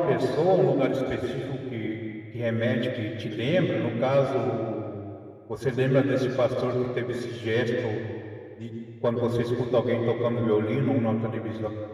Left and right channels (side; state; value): both; identical; correlation 1.00